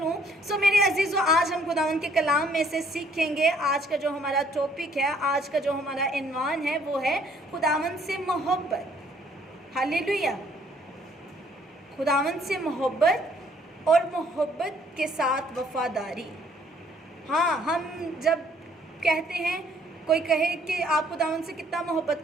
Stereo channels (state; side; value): normal; both; correlation 0.63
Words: मेरे अजीज़ों, आज हम खुदावंद के कलाम में से सीखेंगे। आज का जो हमारा टॉपिक है, आज का जो हमारा इन्वान है, वो है खुदावंद से मोहब्बत। हालेलुया, खुदावंद से मोहब्बत और मोहब्बत के साथ वफादारी। हाँ, हम जब कहते हैं, कोई कहे कि आप खुदावंद से कितना मोहब्बत